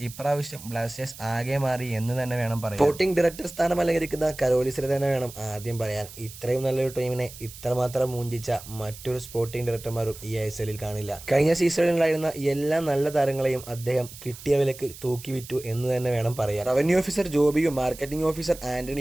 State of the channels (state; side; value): noise; right; hiss, 16 dB below the sound